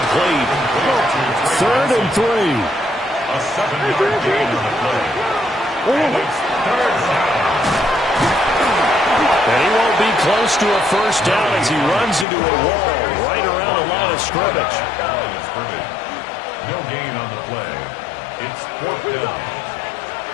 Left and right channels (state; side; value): drops out; right; at 12.2 s